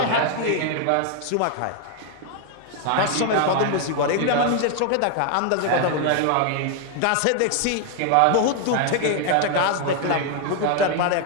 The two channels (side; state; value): both; different; correlation 0.00